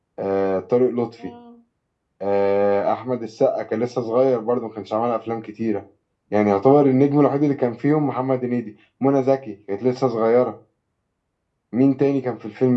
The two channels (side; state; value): both; identical; correlation 1.00